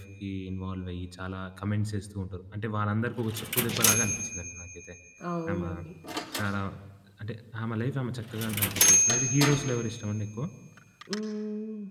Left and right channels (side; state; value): both; identical; correlation 1.00